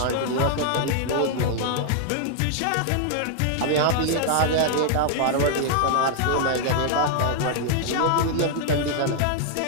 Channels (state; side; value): different; both; correlation 0.00